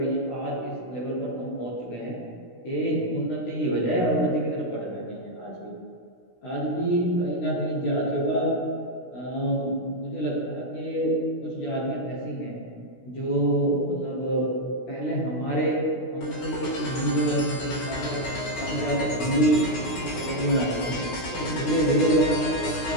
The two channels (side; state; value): right; late; 16 ms